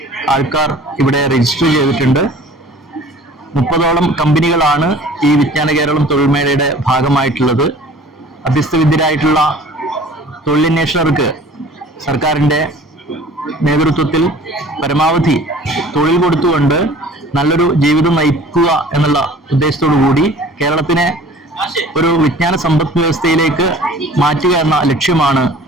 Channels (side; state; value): both; normal; correlation 0.48